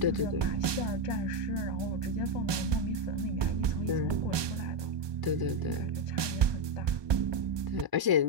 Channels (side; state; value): left; late; 1.2 ms